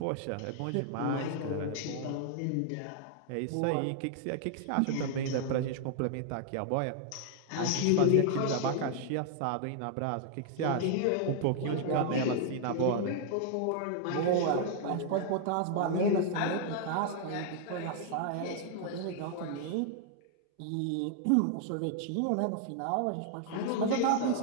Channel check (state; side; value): different; both; correlation -0.01